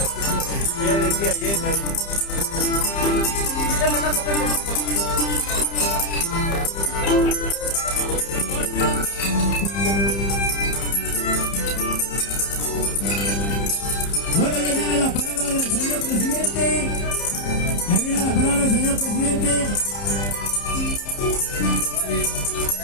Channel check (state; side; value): late; right; 30 ms